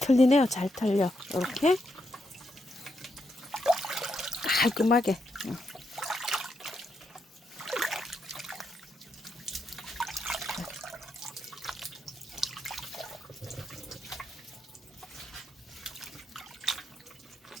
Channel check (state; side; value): normal; both; correlation 0.81